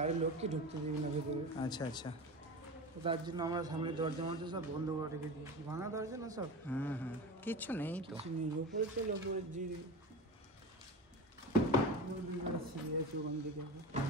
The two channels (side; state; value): both; normal; correlation 0.28